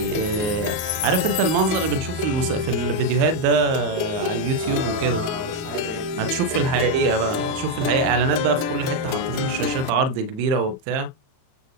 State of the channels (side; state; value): left; late; 38 ms